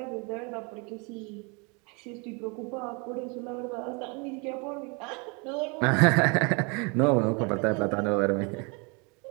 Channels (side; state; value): left; quieter; 31.5 dB